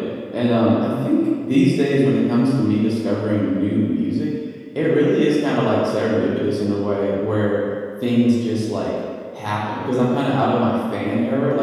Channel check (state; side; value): identical; both; correlation 1.00